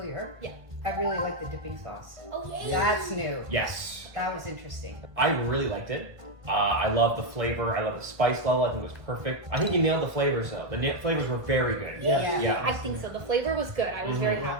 Yeah. I really like the dipping sauce. Oh, yeah. That's new. Yes. That was interesting. I really liked it. I love the flavor. I love the spice level. I think it was perfect. I think you nailed the flavors though. The flavors were very good. Yeah. Yeah. I think so. The flavor was good. I was very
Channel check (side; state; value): left; late; 1.5 ms